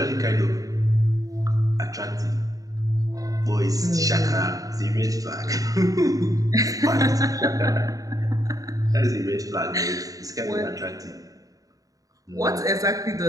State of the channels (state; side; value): late; left; 0.17 ms